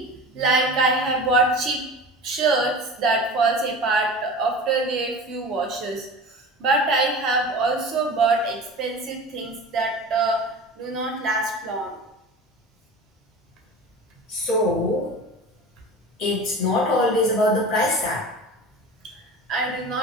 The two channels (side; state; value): both; normal; correlation 0.34